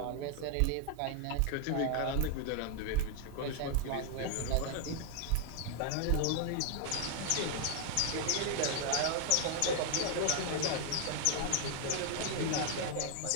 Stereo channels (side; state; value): both; different; correlation 0.00